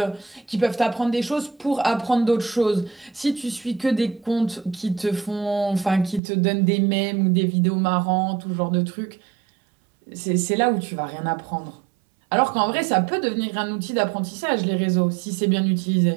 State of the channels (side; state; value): left; drops out; at 6.2 s